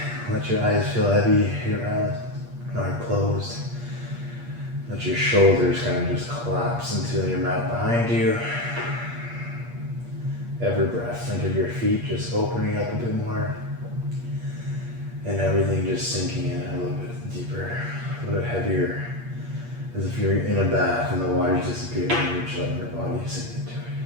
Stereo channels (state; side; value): late; left; 8.5 ms